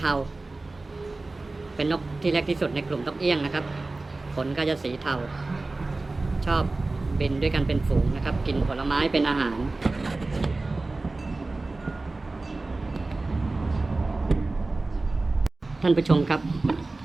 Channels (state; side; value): quieter; left; 3.3 dB